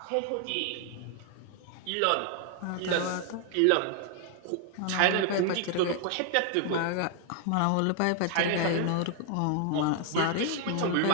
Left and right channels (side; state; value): both; different; correlation 0.00